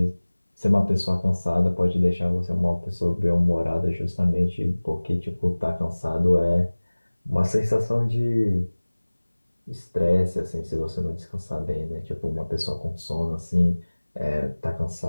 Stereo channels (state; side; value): inverted; both; correlation -1.00